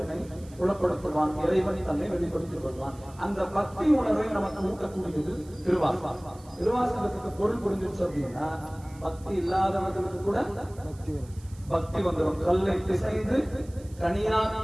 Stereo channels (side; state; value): right; noise; hiss, 25 dB below the sound